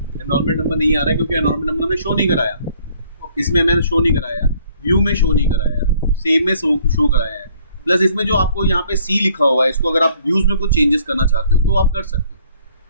एनरोलमेंट नंबर नहीं आ रहा है क्योंकि एनरोलमेंट नंबर हमने शो नहीं कराया, इसमें मैंने शो नहीं कराया, व्यू में शो नहीं कराया, सेव में शो कराया है। प्लस इसमें जो आपको यहाँ पे C लिखा हुआ है, इसको अगर आप व्यूज में कुछ चेंजेस करना चाहते हो तो आप कर सकते हो।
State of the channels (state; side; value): inverted; both; correlation -0.60